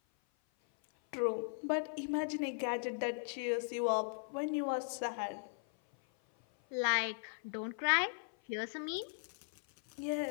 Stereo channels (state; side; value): silent; right; 52 dB below the other